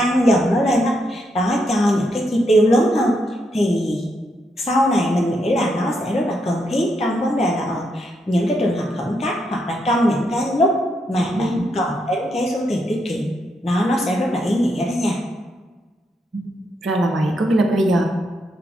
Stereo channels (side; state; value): both; normal; correlation 0.79